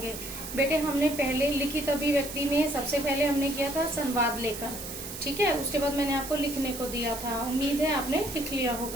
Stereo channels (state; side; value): noise; right; hiss, 9 dB below the sound